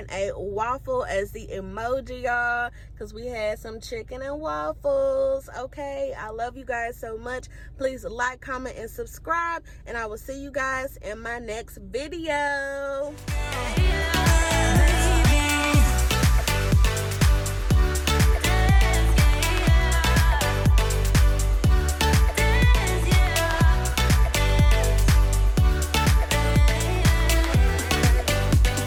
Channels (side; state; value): both; identical; correlation 1.00